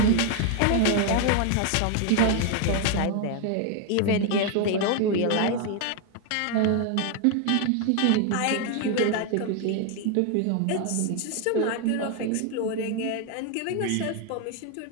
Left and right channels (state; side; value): different; both; correlation 0.01